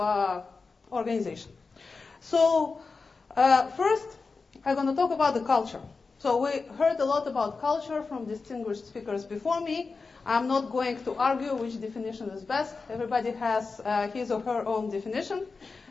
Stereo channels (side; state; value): right; quieter; 4.4 dB